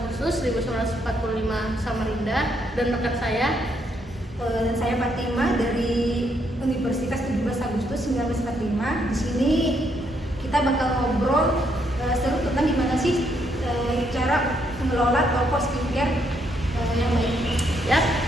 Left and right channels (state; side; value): normal; both; correlation 0.74